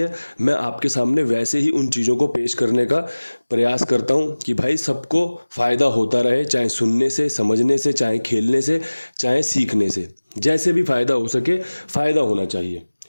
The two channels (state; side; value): inverted; both; correlation -1.00